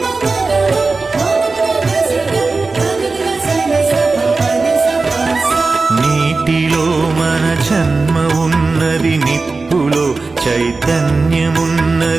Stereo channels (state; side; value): quieter; left; 3.9 dB